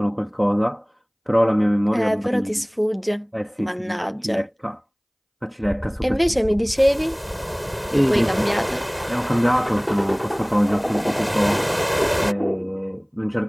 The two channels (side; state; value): both; identical; correlation 1.00